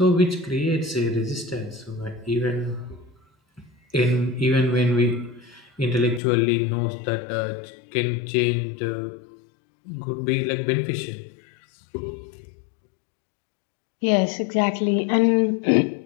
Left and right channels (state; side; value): drops out; right; at 6.2 s